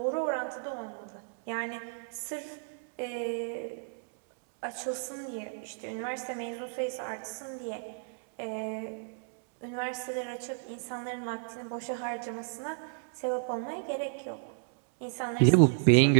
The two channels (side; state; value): left; silent; digital silence